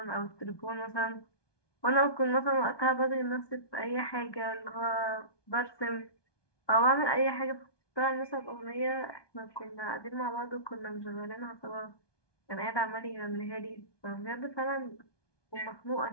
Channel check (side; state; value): right; late; 1.2 ms